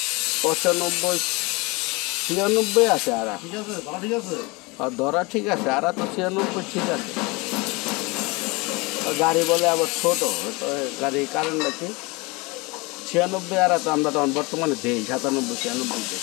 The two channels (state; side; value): quieter; right; 25.9 dB